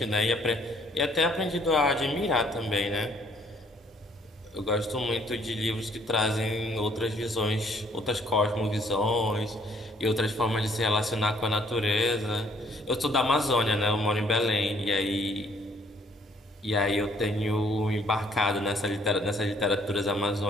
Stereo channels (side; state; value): both; normal; correlation 0.63